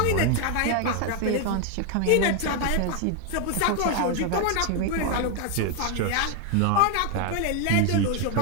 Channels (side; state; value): both; different; correlation 0.01